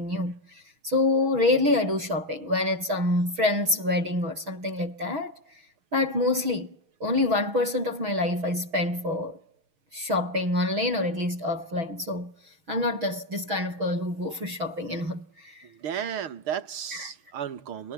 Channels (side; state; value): left; late; 6.1 ms